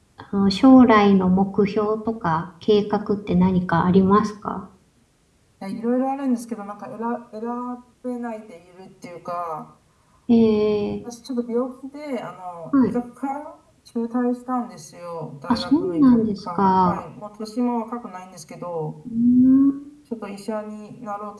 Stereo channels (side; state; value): both; identical; correlation 1.00